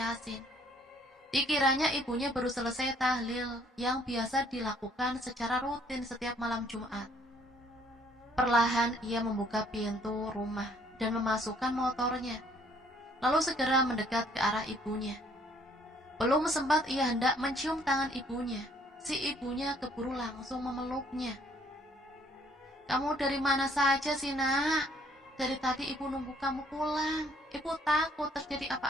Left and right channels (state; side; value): normal; both; correlation 0.63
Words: Dikiranya ibunya baru selesai tahlil yang biasa dilakukan secara rutin setiap malam Jumat. Perlahan ia membuka pintu rumah dan memasukkan motornya, lalu segera mendekat ke arah ibunya. Belum sempat ia hendak mencium tangan ibunya, si ibunya keburu langsung memeluknya. Kamu dari mana saja sih nak? Dari tadi ibu nunggu kamu pulang. Ibu takut terjadi